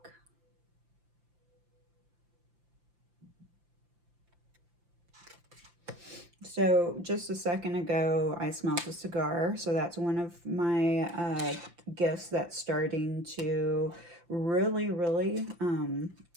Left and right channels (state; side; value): late; left; 5.8 ms